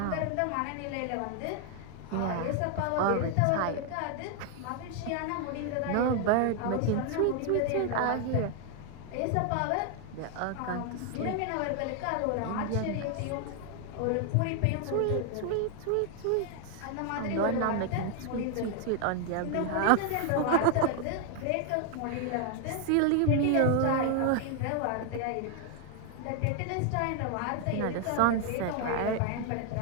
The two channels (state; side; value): different; both; correlation 0.00